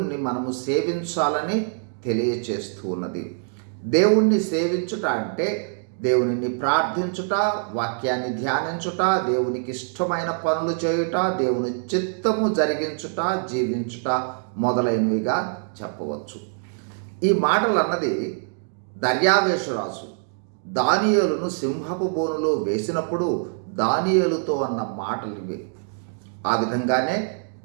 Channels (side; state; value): left; silent; digital silence